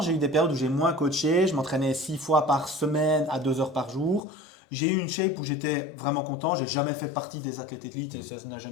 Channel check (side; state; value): right; drops out; at 4.2 s